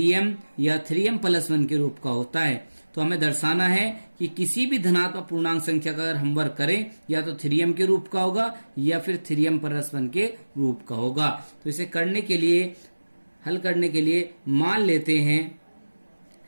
या 3m+1 के रूप का होता है। तो हमें दर्शाना है कि किसी भी धनात्मक पूर्णांक संख्या का अगर हम वर्ग करें या तो 3m के रूप का होगा या फिर 3m+1 के रूप का होगा। तो इसे करने के लिए हल करने के लिए मान लेते हैं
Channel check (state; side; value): inverted; both; correlation -1.00